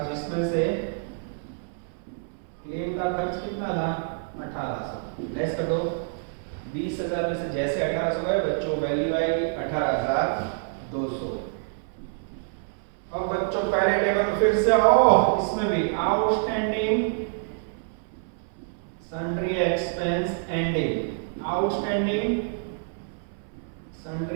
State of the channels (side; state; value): left; silent; 60 dB below the other